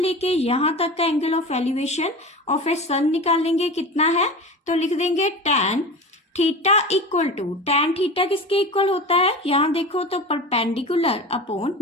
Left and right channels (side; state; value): both; normal; correlation 0.31